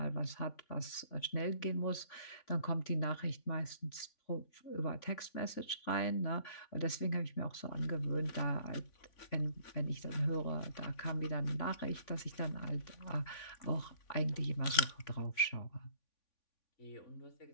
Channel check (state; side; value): late; right; 3.5 ms